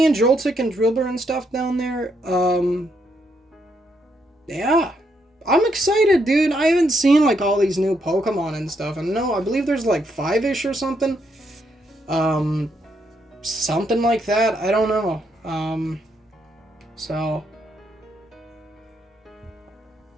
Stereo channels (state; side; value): normal; both; correlation 0.77